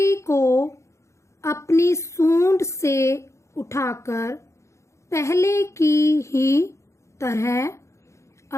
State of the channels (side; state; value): right; late; 0.14 ms